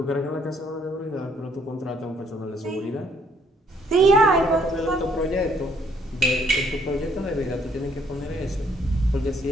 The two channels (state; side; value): normal; both; correlation 0.66